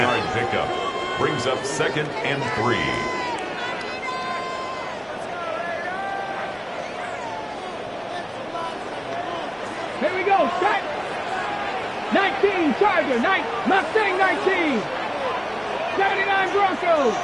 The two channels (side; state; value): both; identical; correlation 1.00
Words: Pickup brings up 2nd and 3. Here we go, set. 19, Charger, Mustang 19. 79 Broncos.